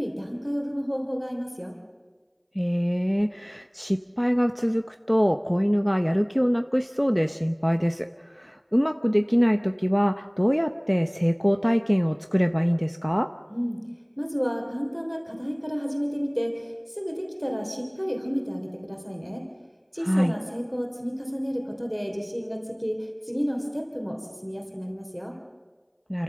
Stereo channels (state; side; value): identical; both; correlation 1.00